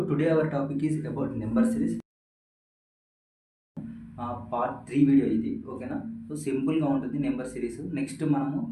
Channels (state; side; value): identical; both; correlation 1.00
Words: today our topic is about number series. Part 3 video ఇది, ఓకేనా? So సింపుల్గా ఉంటుంది number series. Next మనము